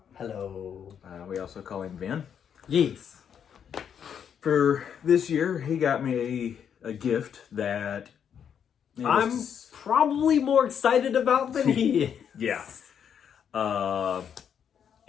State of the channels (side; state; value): right; quieter; 8.1 dB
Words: Hello. We also call him Vin. Yes. For this year, he got me a gift that... I'm probably more excited about than he is. Yeah.